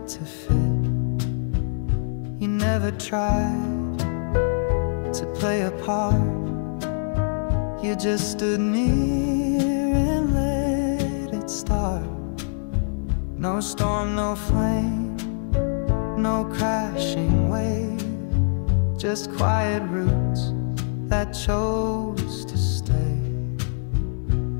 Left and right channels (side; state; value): right; silent; 60 dB below the other